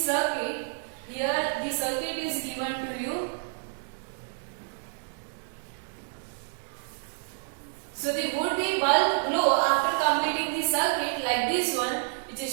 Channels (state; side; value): silent; left; digital silence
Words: Here the circuit is given to you. So the would-be bulb glow after completing the circuit like this one, which